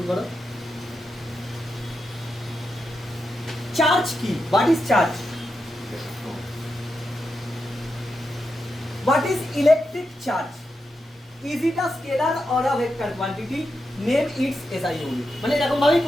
করো চার্জ কি what is charge what is electric charge is it a scalar or a vector quantity name it's SI unit মানে এরকম ভাবেই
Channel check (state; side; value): normal; both; correlation 0.87